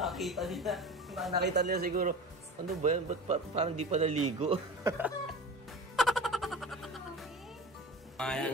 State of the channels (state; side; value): normal; both; correlation 0.34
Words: Nakita nila siguro. Ano ba yan? Ba't parang di pa naligo?